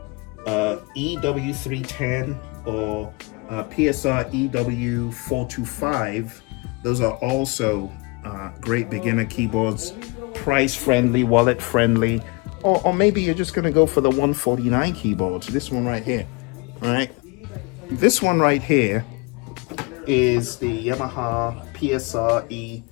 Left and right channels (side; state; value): right; quieter; 27.7 dB